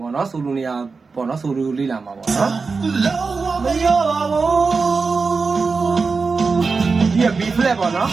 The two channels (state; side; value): quieter; left; 4.5 dB